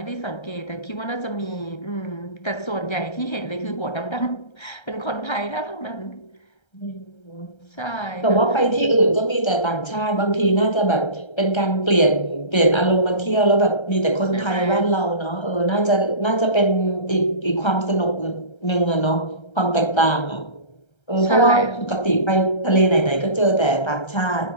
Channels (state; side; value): late; right; 1.3 ms